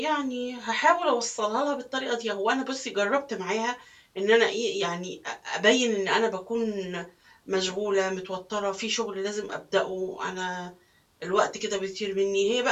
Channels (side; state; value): both; identical; correlation 1.00